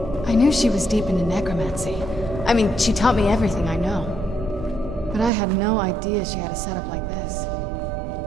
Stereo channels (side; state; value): left; drops out; at 5.3 s